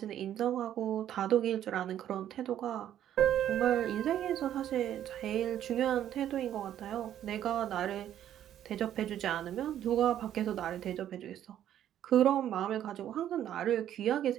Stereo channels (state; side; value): quieter; left; 11.0 dB